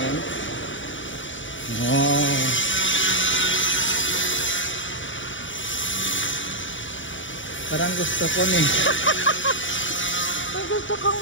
Oh. Parang gusto ko ni. Gusto kong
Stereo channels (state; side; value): late; right; 0.56 ms